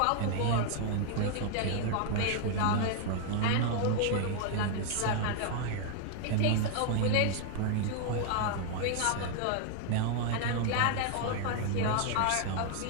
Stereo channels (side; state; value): both; different; correlation 0.00